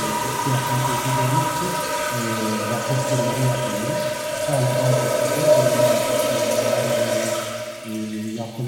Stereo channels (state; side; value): identical; both; correlation 1.00